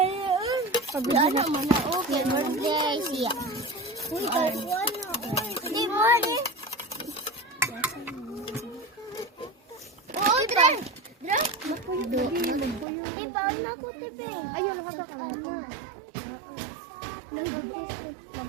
Pag Ano man na okay birthday siya. Uy, di mo ni. Oh, dre. Ibaw na ko tepe. ayun, haga ka lang.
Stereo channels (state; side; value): drops out; left; at 12.9 s